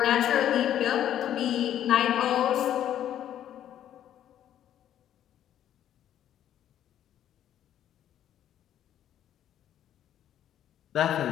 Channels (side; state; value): right; quieter; 11.0 dB